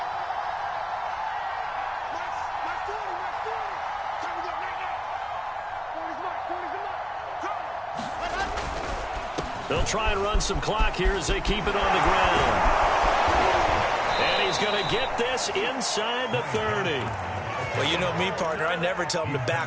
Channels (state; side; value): identical; both; correlation 1.00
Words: They'll try and run some clock here as they keep it on the ground. And he's going to get this inside the 30. Well, you know me, partner. I never tell them to